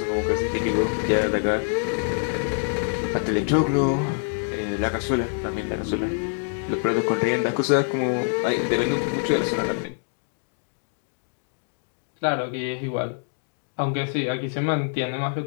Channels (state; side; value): silent; right; 62 dB below the other